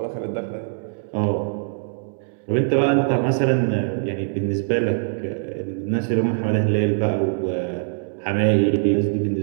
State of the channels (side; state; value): left; silent; digital silence